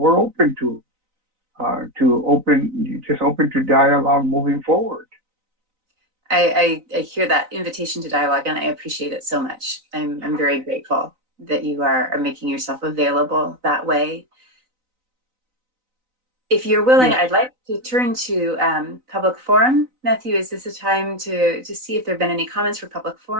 open to open to dialogue moving forward. I hear that invitation to dialogue, and I appreciate it so much. I'm very grateful that you are making yourself available that way. If you're willing, Yes. I'd like to turn to public forum. Matthew, is this a time to see if there have been any comments for public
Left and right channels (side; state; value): left; late; 3.9 ms